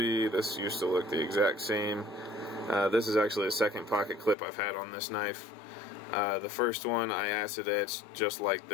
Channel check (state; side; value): drops out; right; at 4.4 s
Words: This used to look the exact same. This is actually the second pocket clip I've had on this knife. The first one I acid etched just like